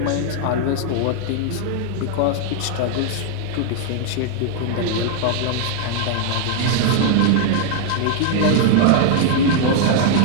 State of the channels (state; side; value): different; both; correlation 0.00